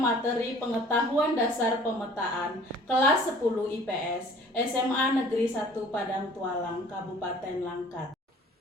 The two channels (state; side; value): normal; both; correlation 0.51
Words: materi pengetahuan dasar pemetaan kelas 10 IPS SMA Negeri 1 Padang Tualang, Kabupaten Langkat.